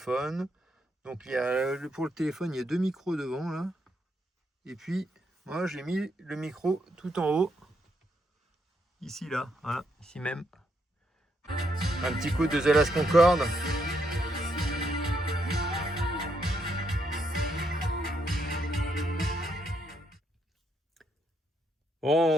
Donc il y a pour le téléphone, il y a 2 micros devant là. Et puis moi j'ai mis le micro tout en haut. Ici là, voilà, ici même. Un petit coup de The Last Concorde.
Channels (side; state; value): both; normal; correlation 0.76